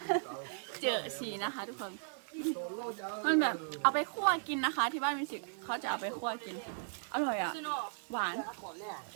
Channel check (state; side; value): silent; left; digital silence